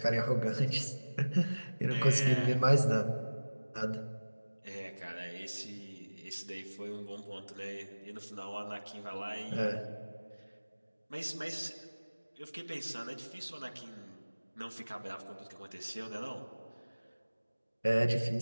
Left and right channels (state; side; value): inverted; both; correlation -1.00